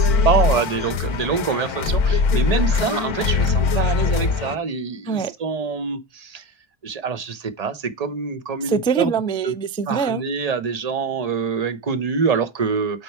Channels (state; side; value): late; right; 1.3 ms